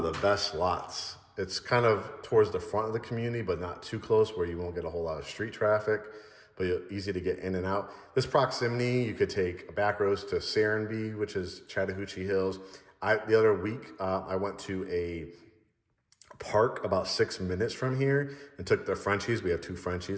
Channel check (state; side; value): identical; both; correlation 1.00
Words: the best lots. It's kind of towards the front of the community, but not too close where you won't get a whole lot of street traffic, but easy to get in and out. This proximity, you could take a back roads to Serenbe, which is Chattahoochee Hills. The other week, I went to a park about 6 minutes from here and took the Frenchies. We have 2